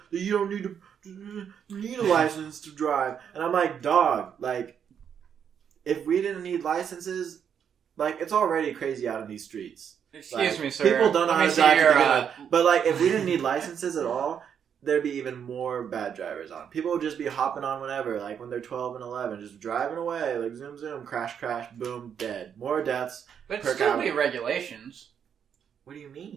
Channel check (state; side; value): quieter; left; 8.0 dB